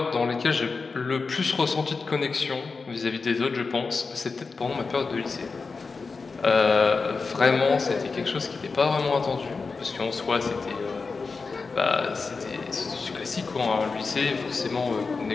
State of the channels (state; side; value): quieter; right; 4.5 dB